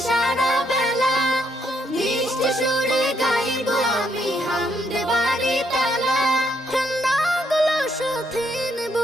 সারা বেলা, মিষ্টি সুরে গাইব আমি হামদ বাড়ি তালা। খেলনাগুলো সাথে নেব,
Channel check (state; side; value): normal; both; correlation 0.74